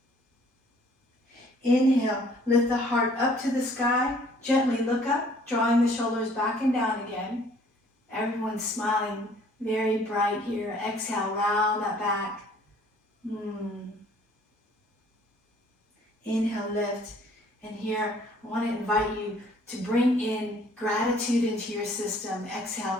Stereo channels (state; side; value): normal; both; correlation 0.57